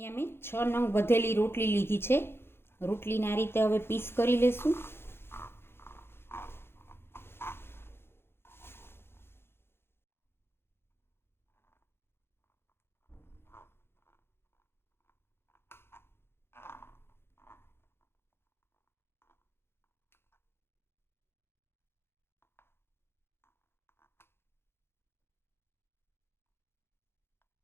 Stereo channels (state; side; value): late; right; 0.11 ms